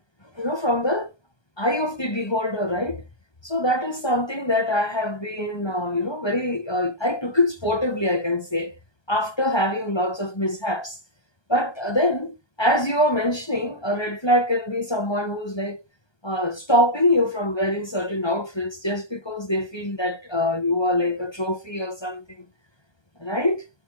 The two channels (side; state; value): right; late; 1.3 ms